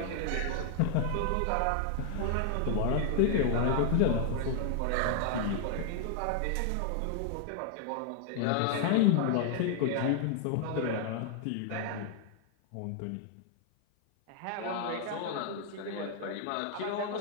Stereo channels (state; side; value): different; both; correlation 0.00